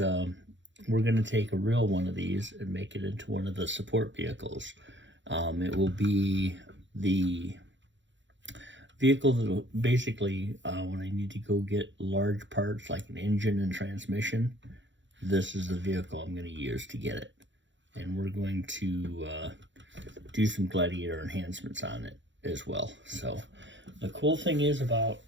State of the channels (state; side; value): late; left; 0.54 ms